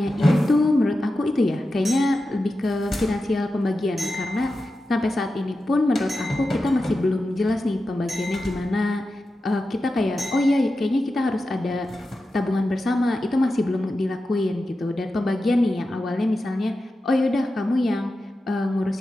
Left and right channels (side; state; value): both; normal; correlation 0.91